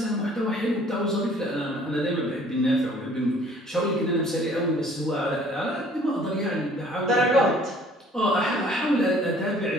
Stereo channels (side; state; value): both; normal; correlation 0.55